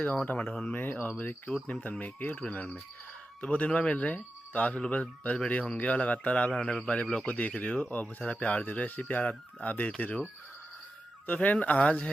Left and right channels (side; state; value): both; normal; correlation 0.91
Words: गाँव टमाटर में और मेरे क्यूट नेम तन्मय के यूट्यूब चैनल में। तो बहुत दिन बाद मिल रहे हैं, तो आप लोग बस बढ़िया होंगे और लगातार आप हमारे ब्लॉग को देख रहे हो और बहुत सारा प्यार दे रहे हो। ऐसे प्यार आप देते रहो। तो फ्रेंड, आज